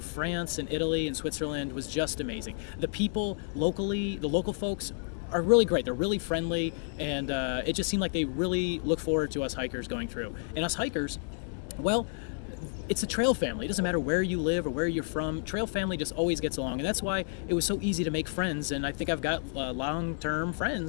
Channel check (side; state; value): right; silent; digital silence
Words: and Italy and Switzerland was just amazing. The people locally, the local folks are really great. They're really friendly, and it just seemed like they really look forward to us hikers going through. And us hikers, well, it's a trail family. It doesn't matter where you live or where you're from. Trail family just always gets along, and that's why it was so easy to make friends. And I think I've got long-term